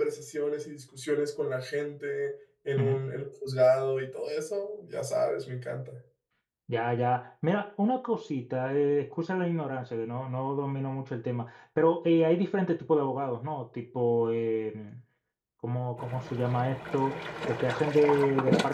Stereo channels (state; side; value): identical; both; correlation 1.00